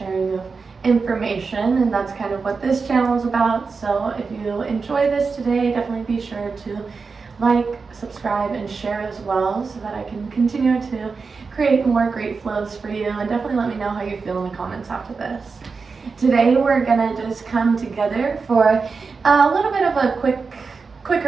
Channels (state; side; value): quieter; left; 4.8 dB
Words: of information, and that's kind of what this channel is about. So if you enjoy this today, definitely be sure to like, subscribe, and share as well so that I can continue to create more great flows for you, and definitely let me know how you feel in the comments after this. Today we're gonna just come together for a little bit of a